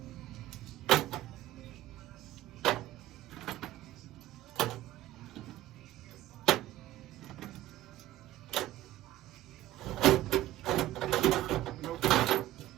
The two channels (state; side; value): quieter; left; 14.7 dB